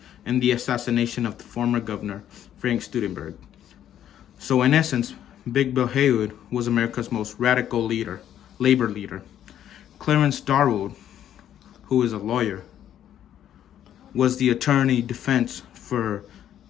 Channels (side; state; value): right; quieter; 10.7 dB